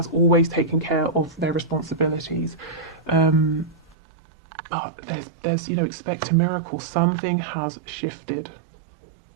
always taken care of their responsibilities. There's you know, expect a miracle. Something has shifted.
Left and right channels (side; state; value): left; drops out; at 4.0 s